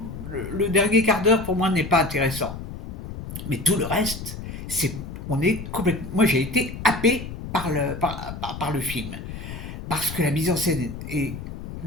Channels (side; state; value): left; noise; rumble, 9 dB below the sound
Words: Le dernier quart d'heure, pour moi, n'est pas intéressant. Mais tout le reste, on est complètement. Moi, j'ai été happé par le film. Parce que la mise en scène